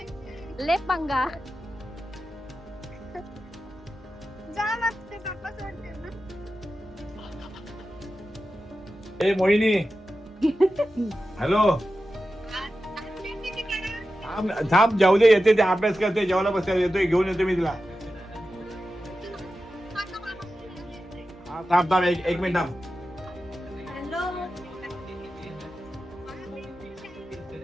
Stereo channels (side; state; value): both; normal; correlation 0.92